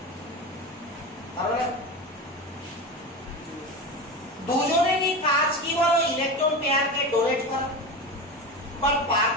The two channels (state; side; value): normal; both; correlation 0.25